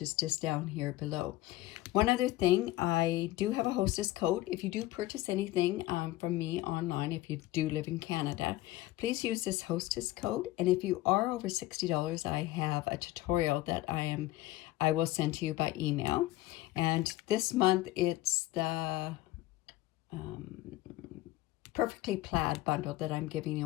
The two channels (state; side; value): quieter; right; 16.9 dB